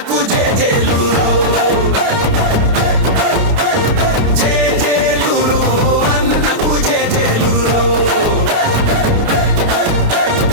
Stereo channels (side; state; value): left; late; 29 ms